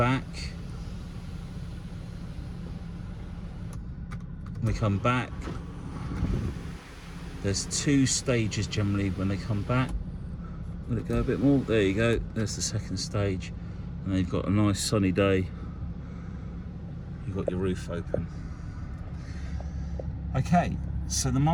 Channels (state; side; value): identical; both; correlation 1.00